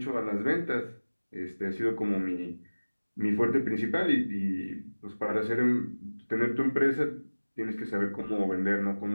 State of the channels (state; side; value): inverted; both; correlation -1.00